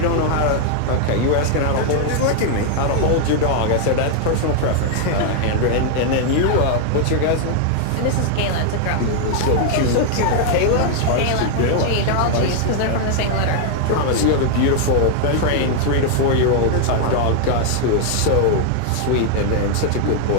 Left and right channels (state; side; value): different; both; correlation 0.00